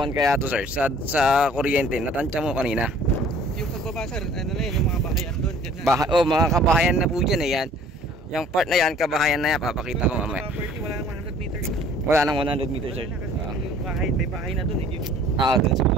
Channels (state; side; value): normal; both; correlation 0.53